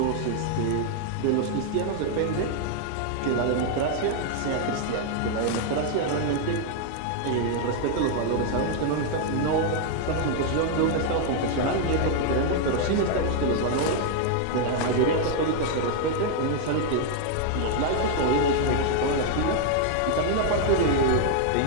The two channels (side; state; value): both; different; correlation 0.00